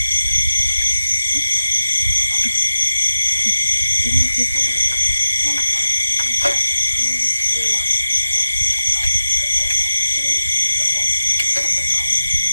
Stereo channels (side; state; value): both; inverted; correlation -0.92